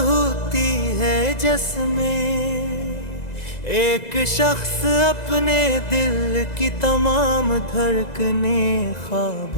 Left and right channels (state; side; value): late; right; 1.9 ms